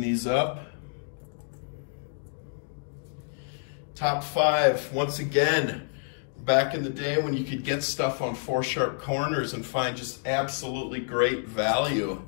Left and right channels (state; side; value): silent; right; digital silence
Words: up. Top 5, once again, back in the day when you could get stuff on 4 Sharp Corners and find just absolutely great value.